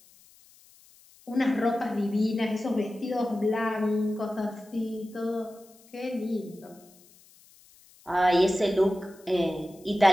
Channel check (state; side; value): noise; left; hiss, 27 dB below the sound